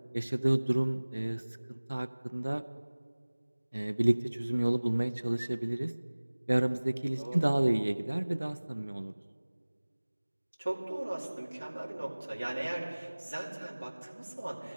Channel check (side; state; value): both; inverted; correlation -1.00